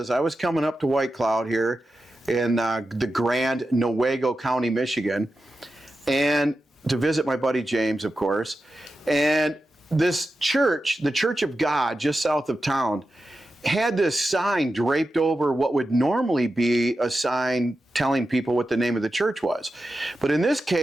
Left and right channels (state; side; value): normal; both; correlation 0.91